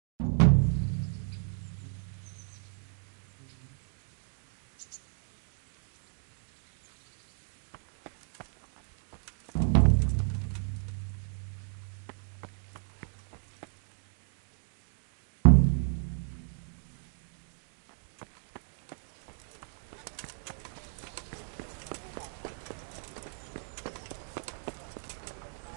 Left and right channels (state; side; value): silent; left; digital silence